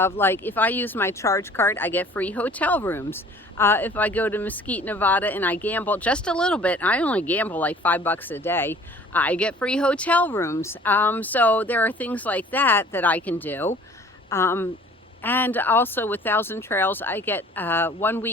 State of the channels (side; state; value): both; normal; correlation 0.51